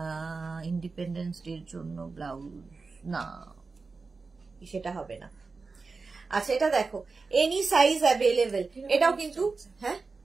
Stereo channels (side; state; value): left; quieter; 4.2 dB